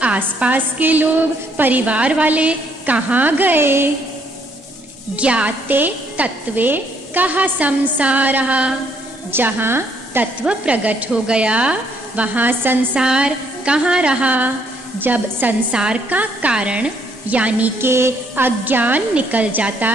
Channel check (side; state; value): both; normal; correlation 0.69